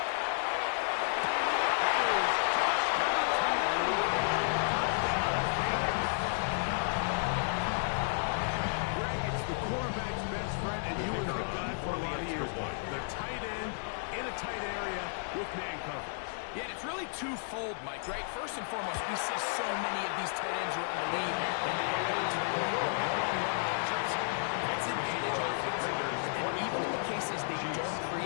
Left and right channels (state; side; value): silent; right; digital silence